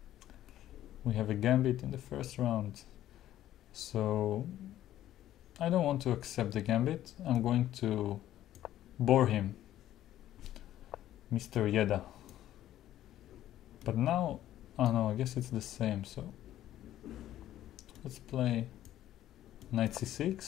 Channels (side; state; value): right; quieter; 12.9 dB